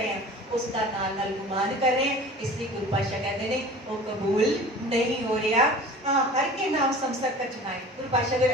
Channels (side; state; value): both; normal; correlation 0.41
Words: हैं उसका नाल नाल गुमान कर रहे हैं, इसलिए गुरु पातशाह कहते हैं वो कबूल नहीं हो रहा। हर के नाम समसर का चुनाए, गुरु पातशाह अगर